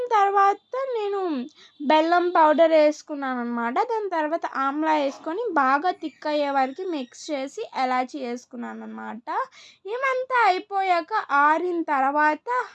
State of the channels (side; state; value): both; identical; correlation 1.00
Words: తర్వాత నేను బెల్లం పౌడర్ వేసుకున్నాను అనమాట. దాని తర్వాత ఆమ్లా వేసుకొని బాగా థిక్ అయ్యే వరకు మిక్స్ చేసి ఎలాచి వేసుకున్నాను అనమాట. ఏమంతా అయిపోయాక ఆరిన తర్వాత